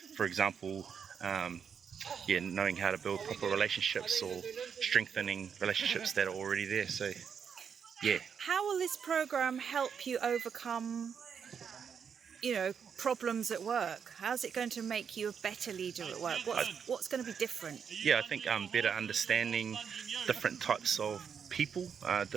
for example, um, yeah, knowing how to build proper relationships or strengthening relationships that are already there. So, yeah. How will this program help you overcome, problems at work? How's it going to make you a better leader at work? What's going to be different? Yeah, I think better understanding different types of people,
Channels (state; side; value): quieter; left; 7.1 dB